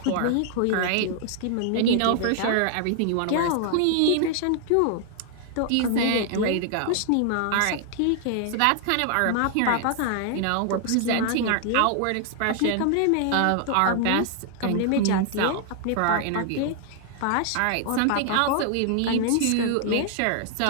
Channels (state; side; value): different; both; correlation 0.00